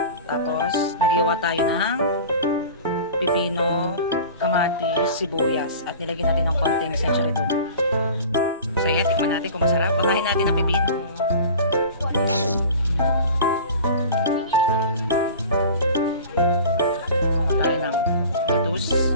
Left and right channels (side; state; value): both; inverted; correlation -0.39